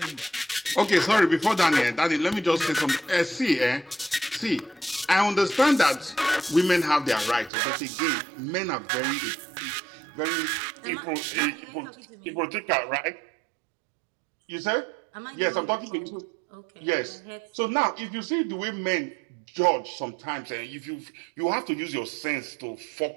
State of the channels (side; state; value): left; drops out; at 7.5 s